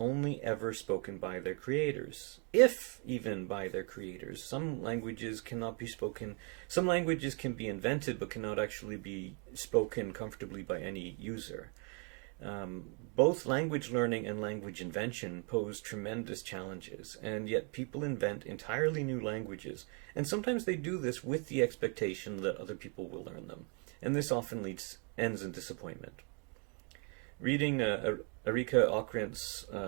ever spoken by their creators, if even by their creators. Some languages cannot be spoken, some languages can be invented but cannot actually be spoken comfortably by any user. Both language learning and language invention pose tremendous challenges, and yet people invent entirely new languages, and sometimes they do this with the expectation that other people will learn them, and this often ends in disappointment. Reading Erika Ockrent's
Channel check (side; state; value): left; quieter; 36.7 dB